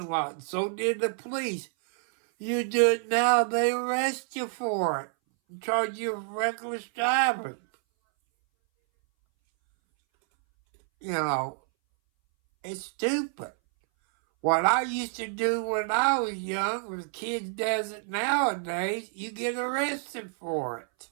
lot. So did the police. You do it now, they arrest you for it and charge you with reckless driving. You know, it's stupid. What I used to do when I was young, when kids does it nowadays, you get arrested for it.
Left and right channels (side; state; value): left; silent; 59 dB below the other